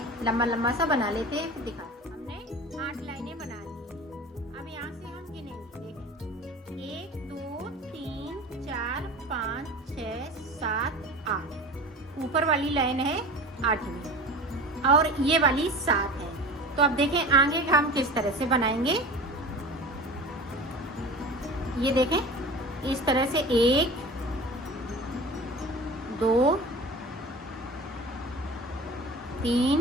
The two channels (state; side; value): normal; both; correlation 0.36